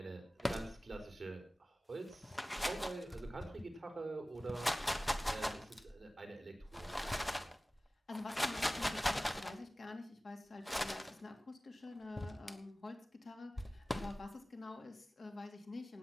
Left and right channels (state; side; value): normal; both; correlation 0.97